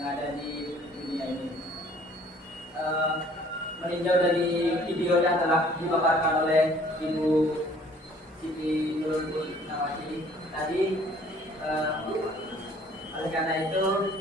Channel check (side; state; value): both; normal; correlation 0.56